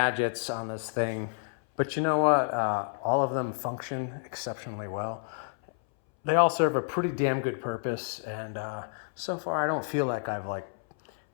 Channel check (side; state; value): right; silent; 58 dB below the other